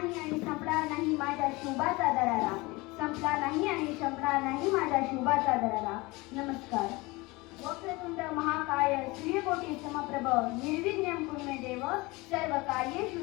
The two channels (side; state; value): right; quieter; 23.2 dB